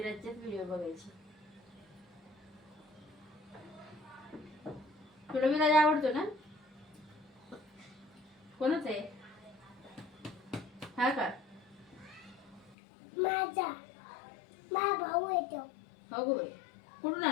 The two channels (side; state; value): right; drops out; at 12.8 s